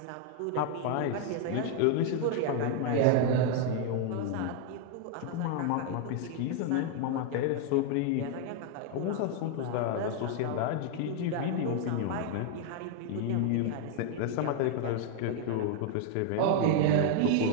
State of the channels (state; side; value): different; both; correlation 0.00